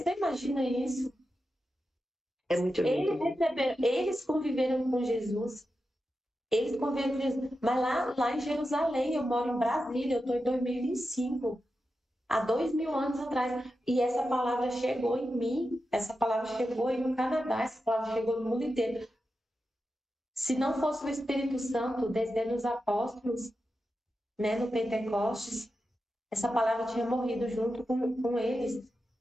imagina isso? É muito lindo. Eles conviveram com Jesus. Eles conviveram com Jesus. Mas lá em Jerusalém, eu moro em Brasília, eu estou em 2025. Há 2000 anos atrás. E essa palavra chegou em mim, essa palavra chegou aí no Canadá, essa palavra chegou no mundo inteiro. Se não fosse o Espírito Santo descendo os apóstolos, né, no Pentecostes, essa palavra tinha morrido junto com eles.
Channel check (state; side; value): normal; both; correlation 0.90